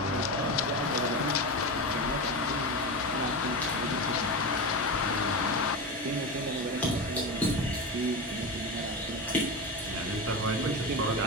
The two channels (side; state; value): both; normal; correlation 0.21